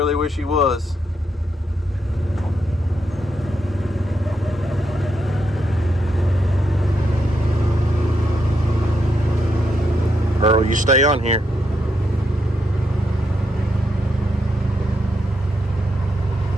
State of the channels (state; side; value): normal; both; correlation 0.81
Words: wish he was. Earl, you stay on here.